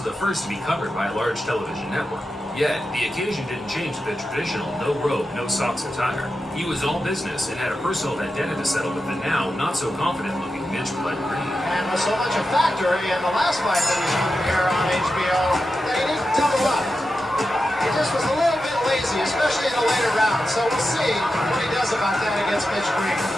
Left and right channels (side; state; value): both; normal; correlation 0.90